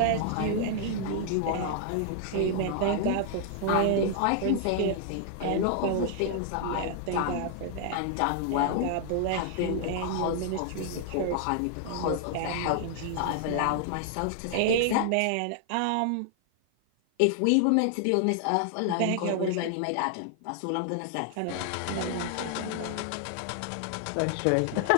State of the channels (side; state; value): both; different; correlation 0.00